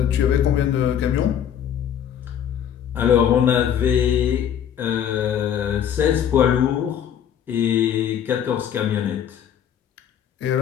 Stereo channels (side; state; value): right; quieter; 9.3 dB